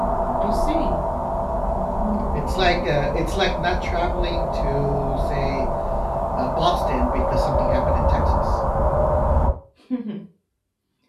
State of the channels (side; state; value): both; identical; correlation 1.00